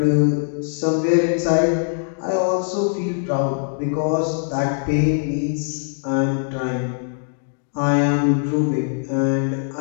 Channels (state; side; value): silent; right; digital silence